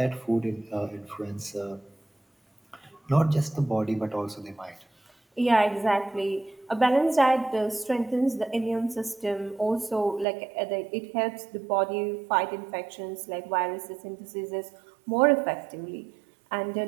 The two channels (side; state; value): left; drops out; at 10.2 s